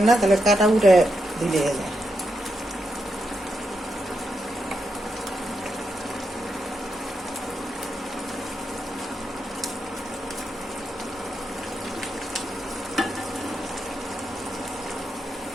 না তাহলে কাটা উঠে দিলে যায়।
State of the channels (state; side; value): normal; both; correlation 0.84